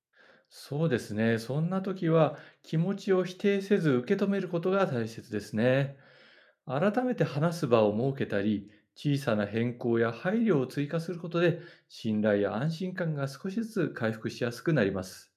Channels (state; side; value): identical; both; correlation 1.00